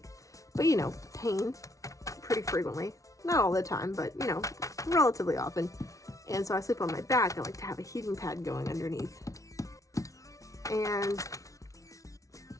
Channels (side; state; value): right; late; 0.16 ms